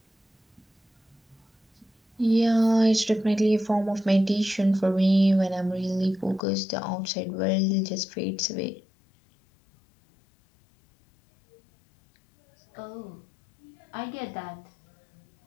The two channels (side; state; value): right; drops out; at 6.4 s